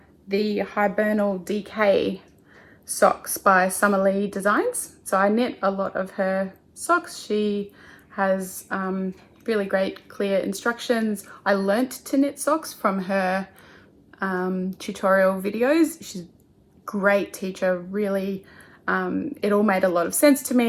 the Hibernal DK socks by Summer Lee Designs. So I knit a lot of her socks. She has really great clear instructions. I learnt to knit socks from her tutorial videos. She's a great teacher, really. It all made a lot of sense to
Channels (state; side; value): identical; both; correlation 1.00